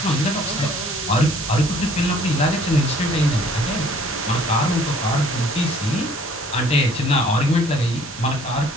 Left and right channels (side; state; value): both; normal; correlation 0.56